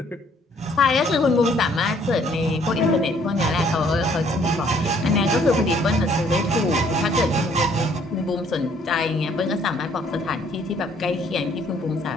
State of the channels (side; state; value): both; normal; correlation 0.63